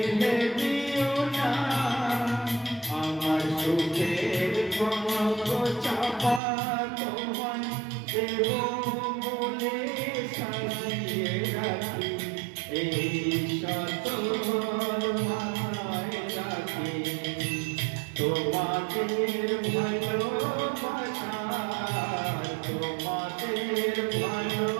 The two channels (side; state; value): left; drops out; at 6.4 s